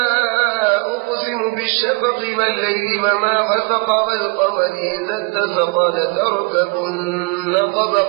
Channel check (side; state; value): left; quieter; 31.2 dB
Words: أقسم بالشفق والليل وما غسق والقمر إذا اتسق لتركبن